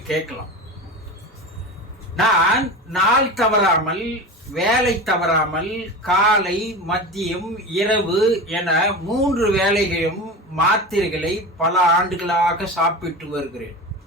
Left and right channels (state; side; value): normal; both; correlation 0.28